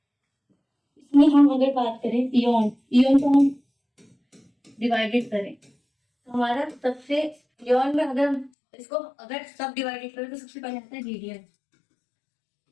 इसमें हम अगर बात करें इयन को हम डिवाइडेड करें तो हमारा सबसे इयन में अगर इसको अगर सब डिवाइडेड करें तो सबसे पहले आता है रीडियन.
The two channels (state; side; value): drops out; right; at 8.5 s